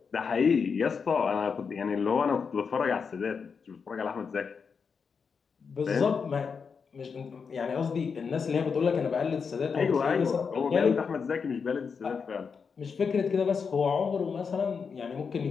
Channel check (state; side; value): quieter; right; 5.8 dB